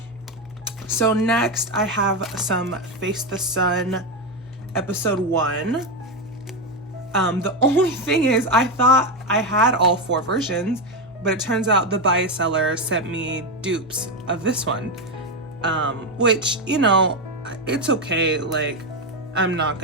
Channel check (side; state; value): both; normal; correlation 0.10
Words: So next I have some Face the Sun episode 1. The only thing is I thought I had all 4 versions, but it turns out the buy seller sent me dupes of this one, which, you know, it's okay. Like, I'm not